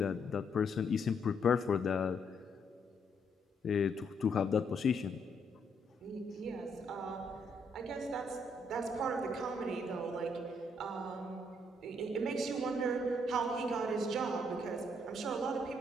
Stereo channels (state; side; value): normal; both; correlation 0.72